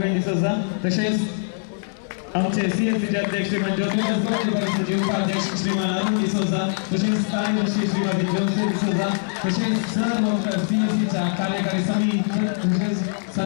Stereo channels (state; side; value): silent; right; digital silence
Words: D'Souza तसेच आमचे सीएससीचे अध्यक्ष ज्योतिष उपाध्यक्ष श्रीमान अरुण डिसोजा तसेच कार्यदर्शी श्रीमती ज्योती डिसोजा तसेच सर्व सीएससीच्या कार्यकारी समिती तसेच